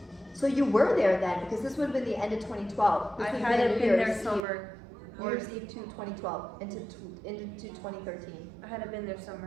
So you were there then, because this would have been the end of 2012. This I would have hadn't New been there Year's summer. Eve, New Year's Eve to 2012 into 2013. I hadn't been there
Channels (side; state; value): left; drops out; at 4.4 s